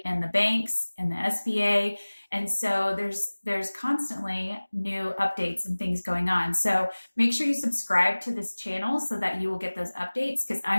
and the banks and the SBA. And so there's constantly new updates and things going on. So make sure you subscribe to this channel so that you will get those updates, because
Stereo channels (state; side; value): inverted; both; correlation -1.00